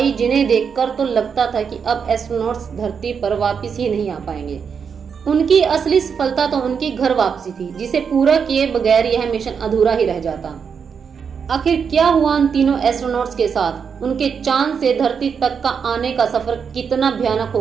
जिन्हें देखकर तो लगता था कि अब एस्ट्रोनॉट्स धरती पर वापस ही नहीं आ पाएंगे। उनकी असली सफलता तो उनकी घर वापसी थी, जिसे पूरा किए बगैर यह मिशन अधूरा ही रह जाता। आखिर क्या हुआ उन तीनों एस्ट्रोनॉट्स के साथ? उनके चांद से धरती तक का आने का सफर कितना भयानक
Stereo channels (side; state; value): left; quieter; 6.5 dB